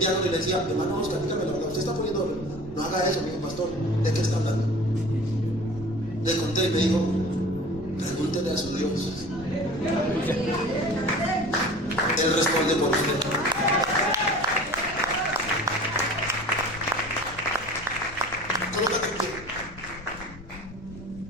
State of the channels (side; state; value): left; noise; rumble, 17 dB below the sound